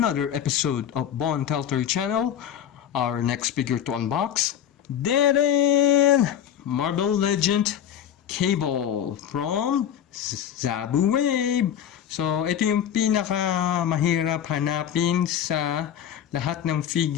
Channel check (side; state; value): right; quieter; 9.8 dB